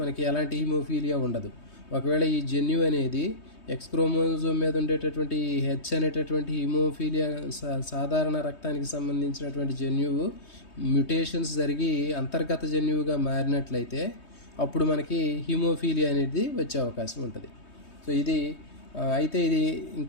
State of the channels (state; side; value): late; right; 3.2 ms